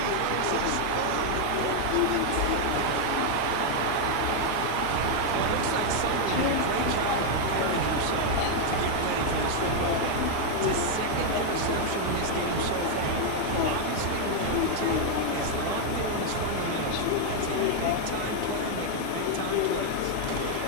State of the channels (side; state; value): both; different; correlation 0.00